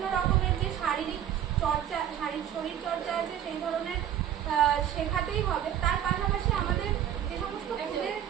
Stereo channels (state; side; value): quieter; left; 10.3 dB